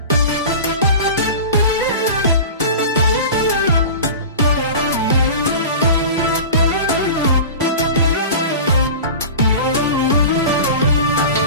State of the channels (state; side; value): inverted; both; correlation -0.34